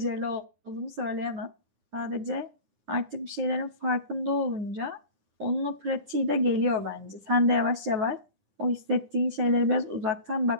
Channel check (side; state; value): left; late; 9.9 ms